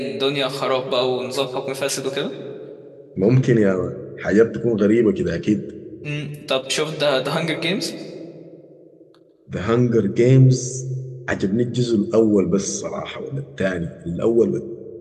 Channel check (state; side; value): identical; both; correlation 1.00